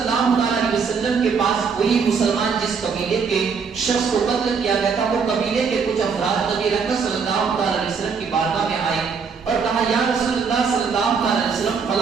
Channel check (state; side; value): quieter; left; 5.7 dB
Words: علیہ وسلم کے پاس وہی مسلمان جس قبیلے کے شخص کو قتل کیا گیا تھا، وہ قبیلے کے کچھ افراد نبی رحمت صلی اللہ علیہ وسلم کی بارگاہ میں آئے اور کہا یا رسول اللہ صلی اللہ علیہ وسلم